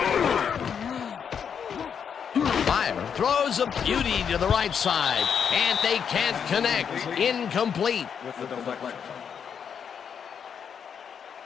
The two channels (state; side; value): quieter; right; 7.4 dB